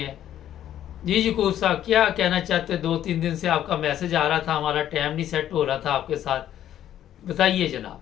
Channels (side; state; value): right; quieter; 11.3 dB